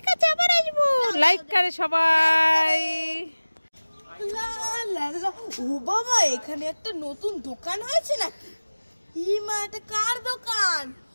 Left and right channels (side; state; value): both; inverted; correlation -1.00